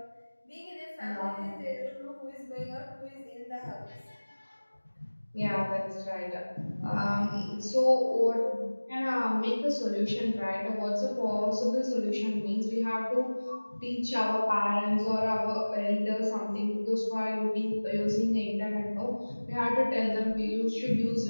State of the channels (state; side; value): inverted; both; correlation -1.00